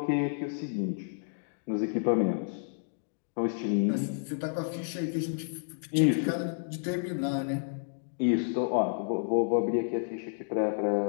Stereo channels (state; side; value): silent; right; digital silence